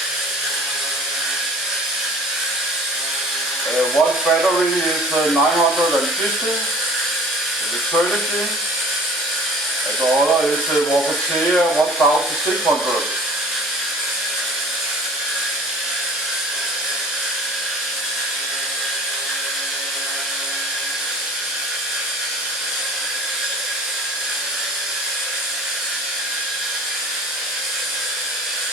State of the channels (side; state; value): both; normal; correlation 0.47